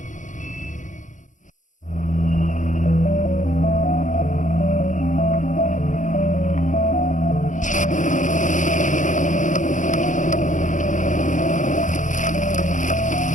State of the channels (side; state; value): right; late; 0.37 ms